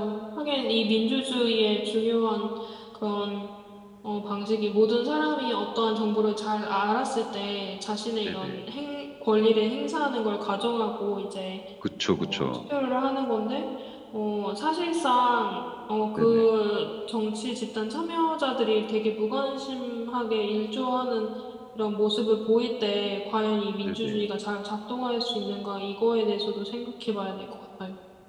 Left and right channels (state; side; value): identical; both; correlation 1.00